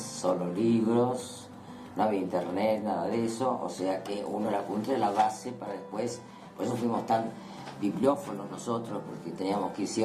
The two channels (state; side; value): identical; both; correlation 1.00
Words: libros, no había internet, nada de eso, o sea que uno el apunte era la base para después, por eso fuimos tan bibliófonos nosotros, porque teníamos que ir sí